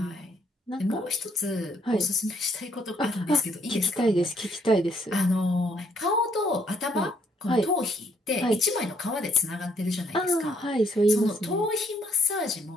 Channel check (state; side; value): normal; both; correlation 0.68